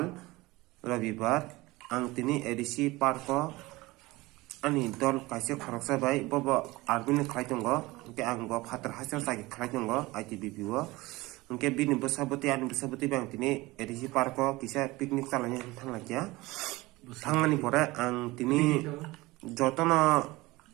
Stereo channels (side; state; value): left; quieter; 20.7 dB